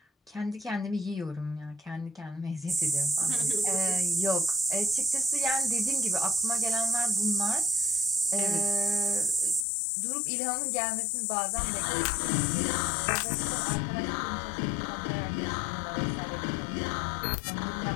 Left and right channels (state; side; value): drops out; right; at 9.7 s